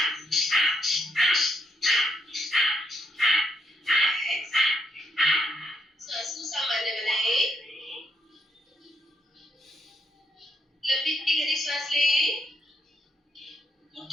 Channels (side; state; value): both; normal; correlation 0.76